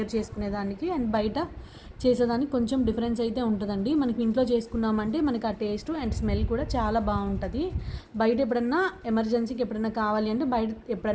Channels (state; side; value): identical; both; correlation 1.00